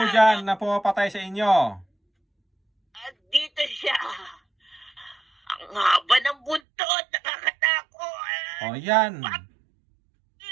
dyan na pumapatay sa inyo. At dito siya. Ang haba ng buntot, nakakatakot. O yan.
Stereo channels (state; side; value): drops out; left; at 6.6 s